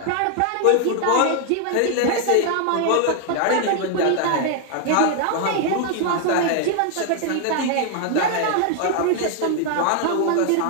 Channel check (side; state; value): both; different; correlation 0.00